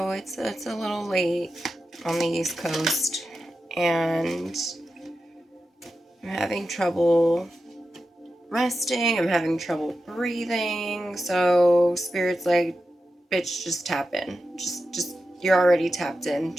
it's a little late on the East Coast, and I'm having trouble resting. I'm having trouble breathing. So Spirit's like, bitch, just tap in. Just you're already tapped in.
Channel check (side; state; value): both; normal; correlation 0.91